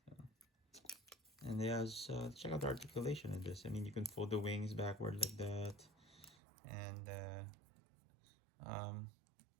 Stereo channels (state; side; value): drops out; left; at 6.4 s